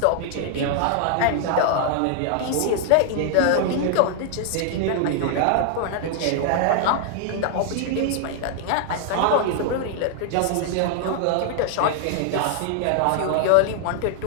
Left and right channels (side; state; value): both; different; correlation 0.00